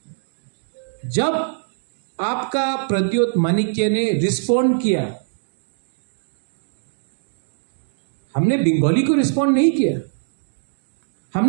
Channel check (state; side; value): silent; left; digital silence